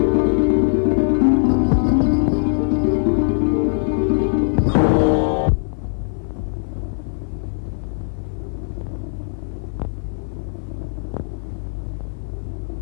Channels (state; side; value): silent; right; 59 dB below the other